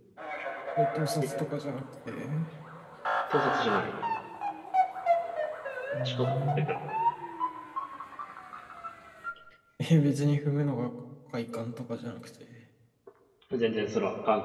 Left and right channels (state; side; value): identical; both; correlation 1.00